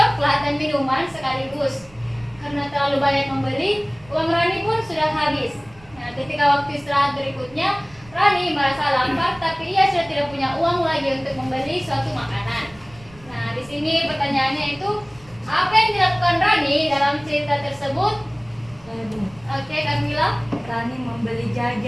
dan minuman sekaligus. Karena terlalu banyak membeli, uang Rani pun sudah habis. Nah, ketika waktu istirahat berikutnya, Rani merasa lapar, tapi ia sudah tidak punya uang lagi untuk membeli suatu makanan. Nah, di sini pertanyaannya itu, apa yang dilakukan Rani dalam cerita tersebut? Oke, Kamila. Rani membeli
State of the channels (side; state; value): right; noise; rumble, 24 dB below the sound